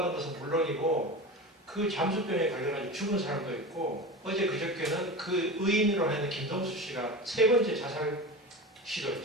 것은 물론이고 그 잠수병에 걸려가지고 죽은 사람도 있고, 어제 그저께는 그 의인으로 하는 김동수 씨가 3번째 자살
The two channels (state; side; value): normal; both; correlation 0.28